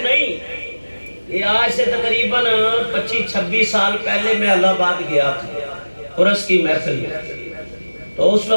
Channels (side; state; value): both; inverted; correlation -1.00